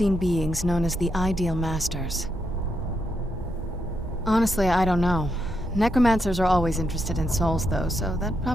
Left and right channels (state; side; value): normal; both; correlation 0.81